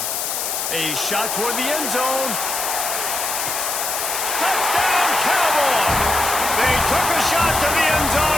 A shot toward the end zone. Touchdown, Cowboys! They took a shot to the end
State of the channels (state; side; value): noise; left; hiss, 2 dB below the sound